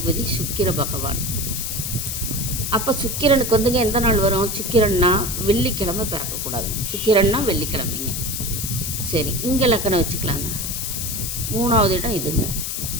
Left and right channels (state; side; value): noise; left; hiss, 3 dB below the sound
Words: சுக்கிர பகவான். அப்போ சுக்கிரனுக்கு வந்துங்க எந்த நாள் வரும்? சுக்கிரன்னா வெள்ளிக்கிழமை பிறக்கக்கூடாது. சுக்கிரன்னா வெள்ளிக்கிழமைங்க. சரி, இங்கே லக்கணம் வச்சுக்கலாங்க. 3ஆவது இடம் இதுங்க.